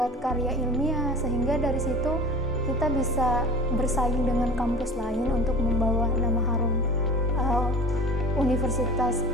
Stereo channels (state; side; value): normal; both; correlation 0.37